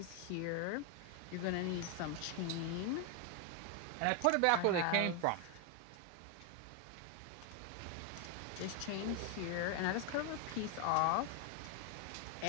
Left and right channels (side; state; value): both; different; correlation 0.01